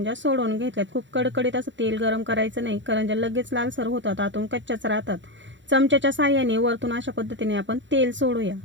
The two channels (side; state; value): left; late; 0.54 ms